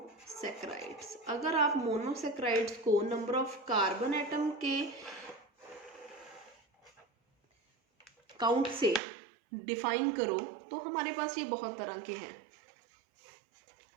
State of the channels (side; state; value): left; drops out; at 9.0 s